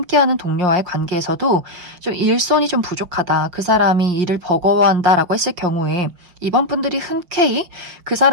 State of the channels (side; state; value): left; late; 5.7 ms